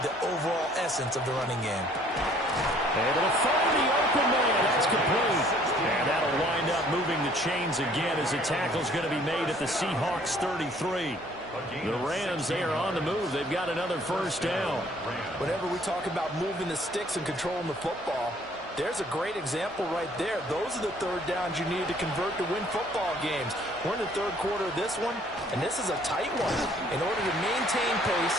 the overall essence of the running game. And it'll find the open man. That's complete. And that'll wind up moving the chains again as the tackle's going to be made at the Seahawks 33. The Rams, they are on the move. They've got another first down. Whenever we talk about moving the sticks and controlling the football, there's a great example right there. Those are the third downs you need to convert to win football games. We're in the third quarter of this one, and this is a tight one. In order to maintain pace,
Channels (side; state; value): right; noise; hum, 25 dB below the sound